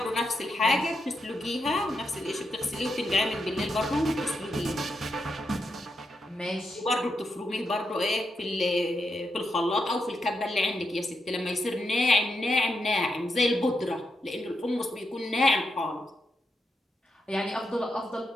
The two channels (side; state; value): both; normal; correlation 0.84